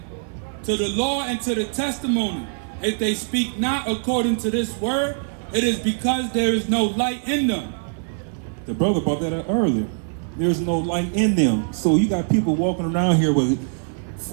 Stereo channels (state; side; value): silent; left; 64 dB below the other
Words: to the law and to the testimony? If they speak not according to this word, it is because there is no light in them. The brother brought that up earlier. There's no light in them. So you got people walking around here with